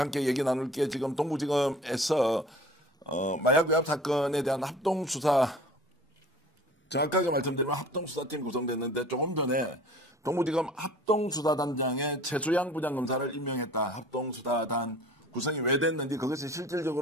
함께 얘기 나눌 게 지금 동부지검에서 마약 외압 사건에 대한 합동수사, 정확하게 말씀드리면 합동수사팀이 구성됐는데 조금 전에 동부지검 합동수사단장에 최수양 부장검사를 임명했다. 합동수사단 구성이 왜 됐는지, 그것이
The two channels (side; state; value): both; normal; correlation 0.45